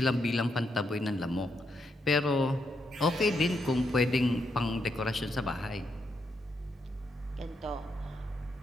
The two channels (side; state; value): both; normal; correlation 0.80